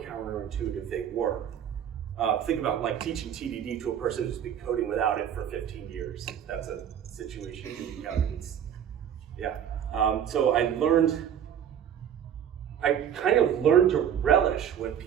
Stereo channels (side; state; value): left; quieter; 9.1 dB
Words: they were. Think about like teaching TDD to a person who's been coding without it for 15 years. That's a situation you encounter. So I kind of learned to relish when